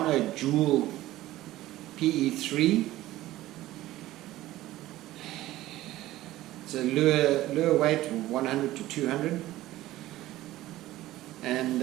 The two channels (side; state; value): left; quieter; 15.9 dB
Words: Dual PE3. It's a lure weight of 100 to 200, and